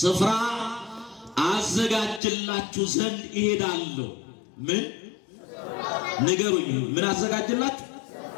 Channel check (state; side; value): drops out; right; at 2.2 s